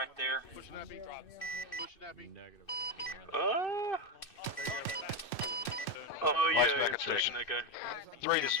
there? Push Nappy. Push Nappy. Negative. Oh yeah, Mike's back I'm at checking station. that guy. 3, this is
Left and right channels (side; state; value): right; late; 2.6 ms